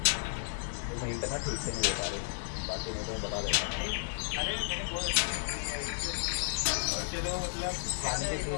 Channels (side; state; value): right; silent; 56 dB below the other